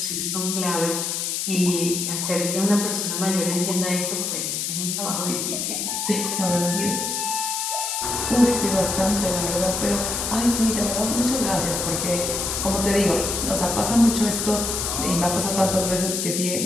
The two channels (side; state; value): left; noise; hiss, 1 dB below the sound